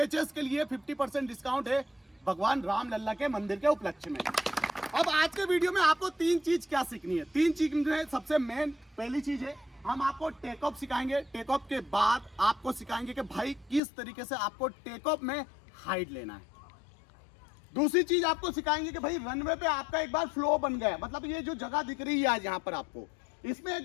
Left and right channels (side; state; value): right; drops out; at 13.8 s